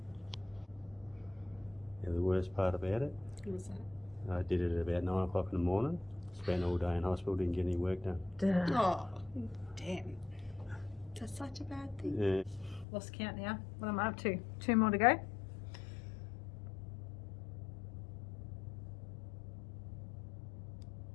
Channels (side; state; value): right; drops out; at 12.9 s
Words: Yeah, the worst part about it, What was that? I did it at about 9 o'clock in the morning. Spent all day in hospital, didn't get any work done. Oh, damn. That's such a bad thing. Yeah. Lost count now. What am I up to? 2 more to go?